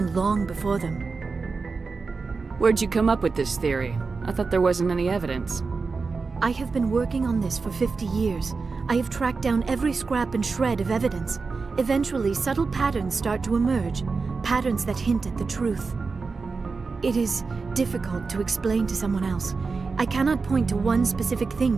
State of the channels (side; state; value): left; quieter; 4.5 dB